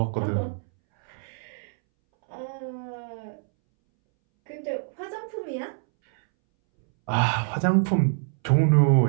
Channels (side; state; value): left; silent; 61 dB below the other